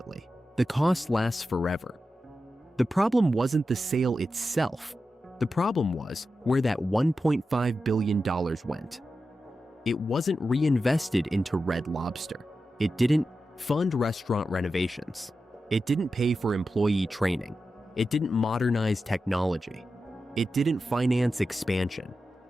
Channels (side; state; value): both; normal; correlation 0.91